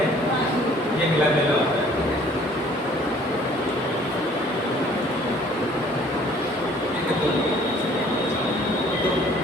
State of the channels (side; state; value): both; normal; correlation 0.56